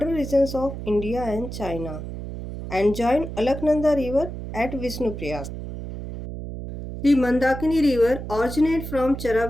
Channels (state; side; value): noise; right; hum, 8 dB below the sound